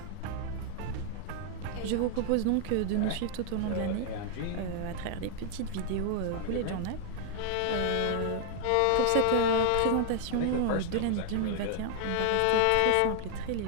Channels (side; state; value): both; different; correlation 0.00